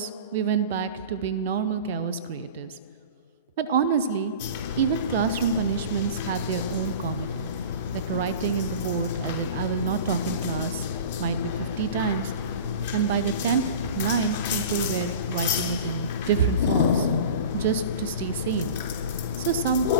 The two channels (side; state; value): both; inverted; correlation -0.36